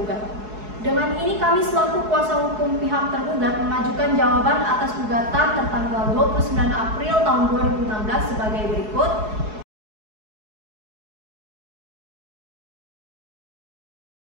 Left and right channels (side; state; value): left; late; 4.7 ms